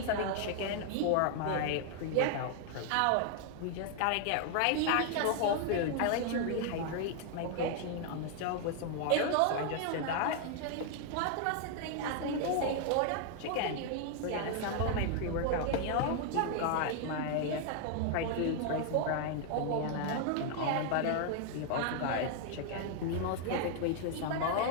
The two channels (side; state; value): both; different; correlation 0.00